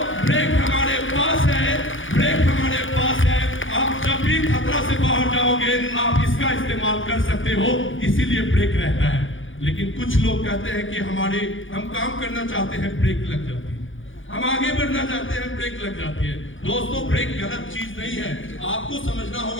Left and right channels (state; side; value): late; right; 0.57 ms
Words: ब्रेक हमारे पास है, ब्रेक हमारे पास है। आप जब भी खतरा से बाहर जाओगे आप इसका इस्तेमाल कर सकते हो, इसीलिए ब्रेक रहता है। लेकिन कुछ लोग कहते हैं कि हम काम करना चाहते हैं, ब्रेक लग जाती है। हम आगे बढ़ना चाहते हैं, ब्रेक लग जाती है। दोस्तों, ब्रेक गलत चीज नहीं है। आपको समझना